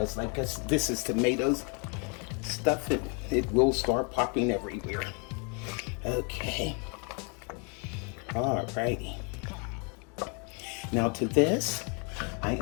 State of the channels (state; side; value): quieter; right; 35.8 dB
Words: like this is tomatoes stuff, it will start popping everywhere. Okay. Alrighty. Now to this, I